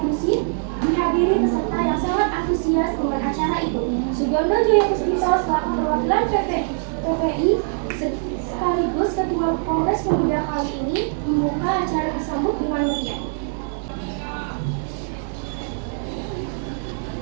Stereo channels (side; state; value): left; silent; 62 dB below the other